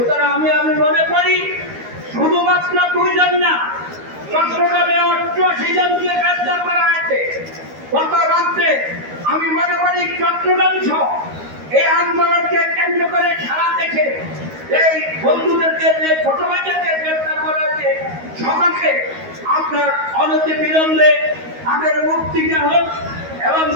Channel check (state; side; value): late; left; 13 ms